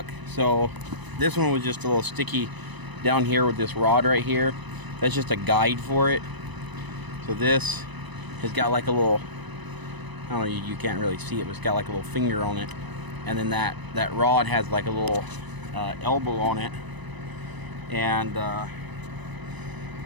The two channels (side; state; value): left; late; 1.0 ms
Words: So this one was just a little sticky down here with this rod right here. That's just a guide for it. So this has got like a little, I don't know, you can't really see it, but it's got like a little finger on it. And then that rod has like a little elbow on it. And